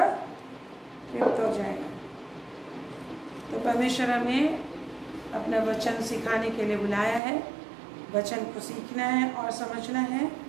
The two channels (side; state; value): left; drops out; at 7.2 s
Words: तृप्त हो जाएगा। तो परमेश्वर हमें अपना वचन सिखाने के लिए बुलाया है, वचन को सीखना है और समझना है